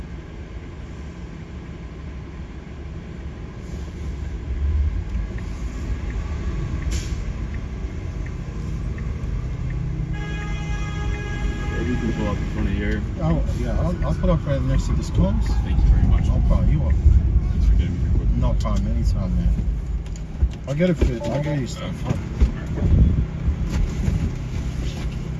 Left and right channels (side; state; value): both; identical; correlation 1.00